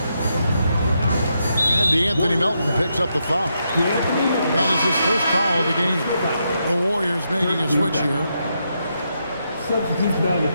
And DeAnthony Melton picks up the foul. That is his first foul of the game. The Warriors making a switch here. Substitution on the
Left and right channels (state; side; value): inverted; both; correlation -0.82